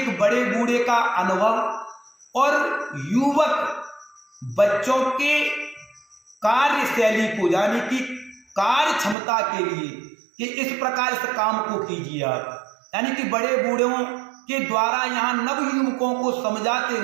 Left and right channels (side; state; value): left; drops out; at 9.2 s